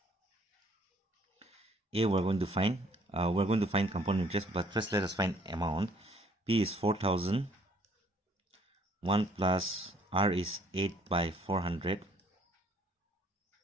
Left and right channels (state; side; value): normal; both; correlation 0.61